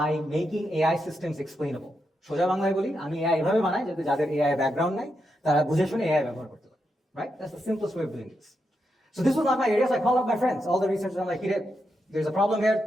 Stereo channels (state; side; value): normal; both; correlation 0.84